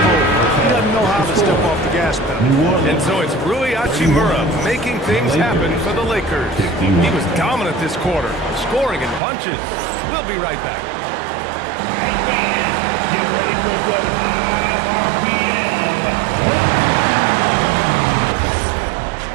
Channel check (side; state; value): left; drops out; at 9.2 s